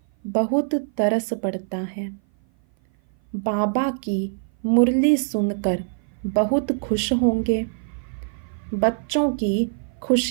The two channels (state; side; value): silent; left; 56 dB below the other